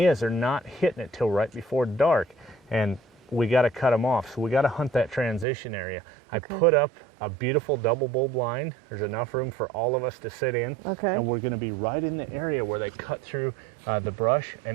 is, they're not hitting it till right before dark, and we got to cut them off, so we got to hunt that transition area. I put up a beautiful double bull blind. There's enough room for all of us to sit in, and we're going to be right in the area where they cut through the brush,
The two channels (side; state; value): left; drops out; at 5.5 s